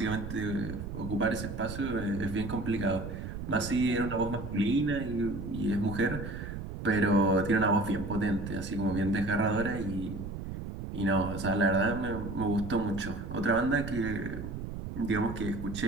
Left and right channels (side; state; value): right; noise; rumble, 7 dB below the sound